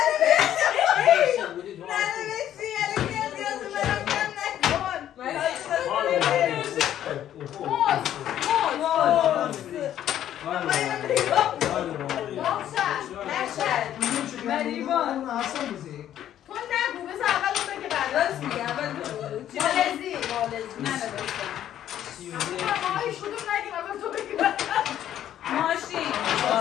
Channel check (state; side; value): quieter; right; 11.3 dB